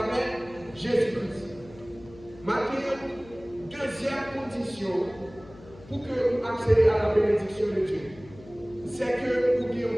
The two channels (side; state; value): left; noise; hum, 21 dB below the sound